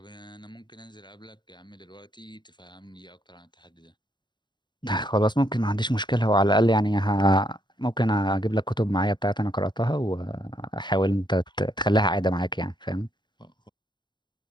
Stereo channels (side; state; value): right; late; 0.22 ms